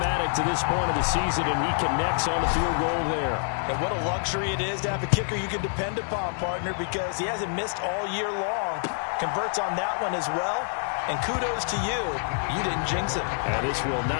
to this point of the season, and he connects on the field goal there. And what a luxury it is to have a kicker you can depend upon, partner, because he hasn't missed all year long. Converts on that one as well. And kudos to you. You didn't jinx him. And this will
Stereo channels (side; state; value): right; silent; digital silence